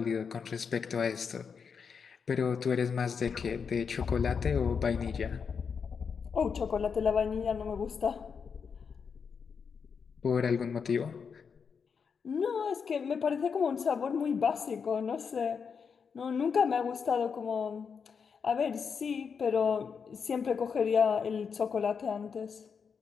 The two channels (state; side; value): quieter; right; 6.1 dB